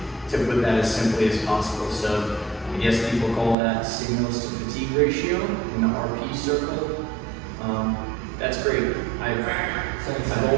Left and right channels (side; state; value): left; drops out; at 3.6 s